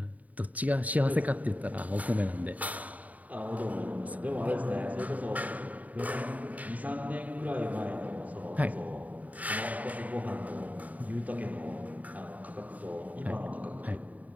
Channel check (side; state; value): left; late; 0.073 ms